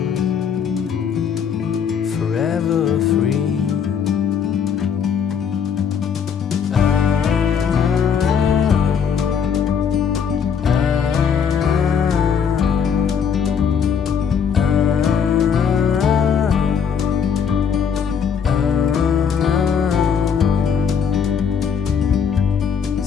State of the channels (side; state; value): right; quieter; 7.1 dB